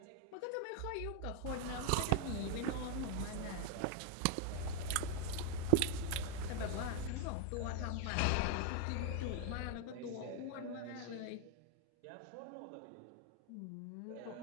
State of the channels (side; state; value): both; different; correlation 0.01